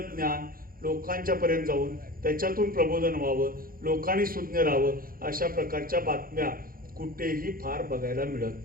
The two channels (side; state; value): left; late; 0.42 ms